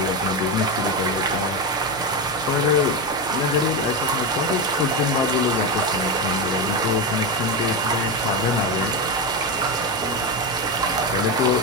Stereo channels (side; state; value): both; normal; correlation 0.14